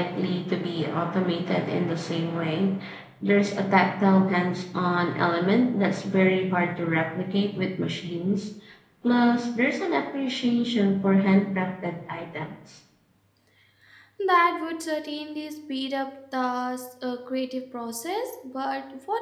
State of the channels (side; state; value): both; identical; correlation 1.00